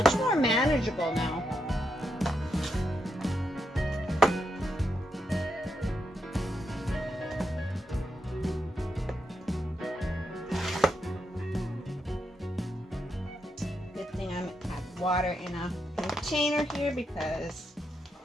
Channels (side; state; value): both; normal; correlation 0.83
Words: more manageable now. water in a container here because